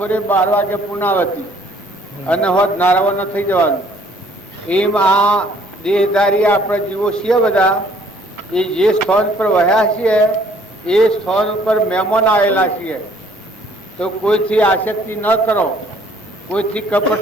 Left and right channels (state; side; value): normal; both; correlation 0.60